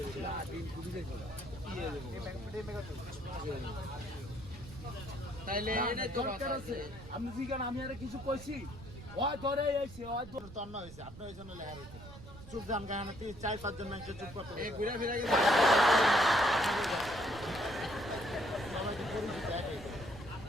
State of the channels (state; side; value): noise; right; rumble, 15 dB below the sound